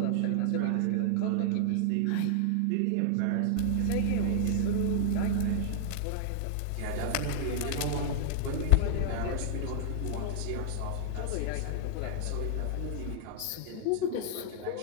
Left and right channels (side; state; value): both; different; correlation -0.01